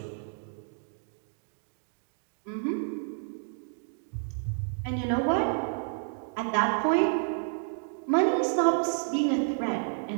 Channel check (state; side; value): silent; left; digital silence